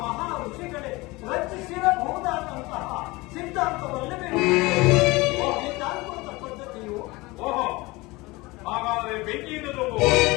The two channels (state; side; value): quieter; right; 22.5 dB